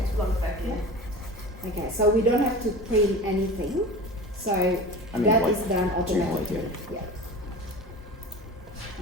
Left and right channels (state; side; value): normal; both; correlation 0.34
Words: One second. Okay, so we don't have to print anything. So I mean, that like, is done automatically. generally, Yeah.